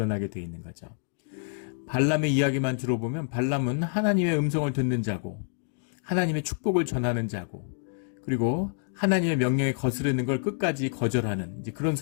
되어 있는 거죠. 발람의 이야기만 들어보면 발람은 하나님의 음성을 듣는 자고 하나님의 축복을 전하는 자고 그리고 하나님의 명령에 거스르는 걸 끝까지 거절하는 이제 그런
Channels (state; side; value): silent; right; digital silence